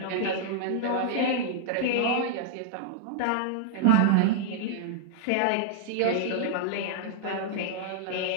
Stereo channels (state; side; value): different; both; correlation -0.01